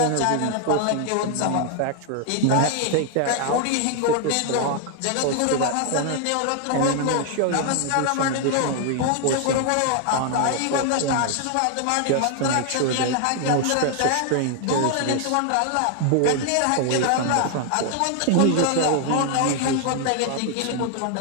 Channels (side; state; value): both; different; correlation 0.00